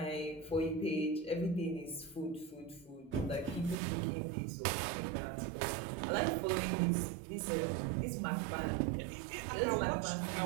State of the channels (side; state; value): left; drops out; at 3.8 s